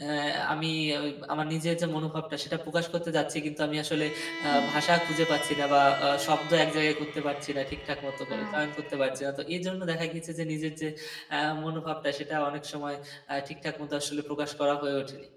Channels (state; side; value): identical; both; correlation 1.00